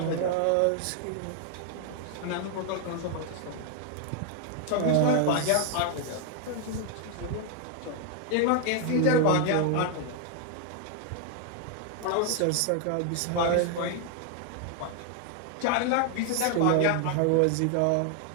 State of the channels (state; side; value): different; both; correlation 0.00